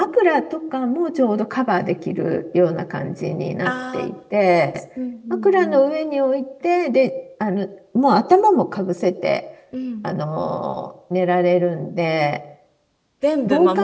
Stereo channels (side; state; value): both; identical; correlation 1.00